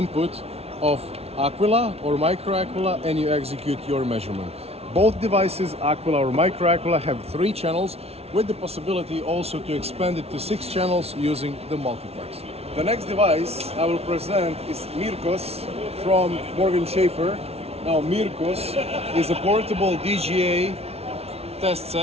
of Aquila or Micro Aquila, and you execute your measurement. Both devices, Aquila or Micro Aquila, have 3 channels with the possibility also to expand it to 6 channels using the multiplex. The next device I will present is Mirkos from Morgan Schaffer. Now Mirkos is a portable DGA test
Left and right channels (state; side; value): late; left; 0.30 ms